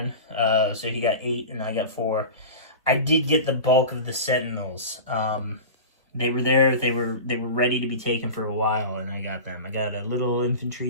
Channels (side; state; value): both; inverted; correlation -0.31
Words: So he got 8 and I got 4. I did get the bulk of the sentinels. They were there. They were ready to be taken for a while, and I got them. I got a little infantry